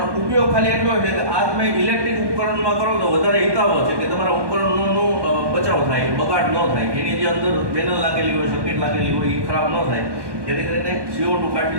ઉપયોગ ખાલી એટલો છે કે આ તમે ઇલેક્ટ્રિક ઉપકરણમાં કરો તો વધારે હિતાવહ છે કે તમારા ઉપકરણનો બચાવ થાય, બગાડ ન થાય. એની જે અંદર પેનલ લાગેલી હોય, સર્કિટ લાગેલી હોય એ ખરાબ ન થાય. જેથી કરીને CO2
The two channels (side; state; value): left; late; 1.2 ms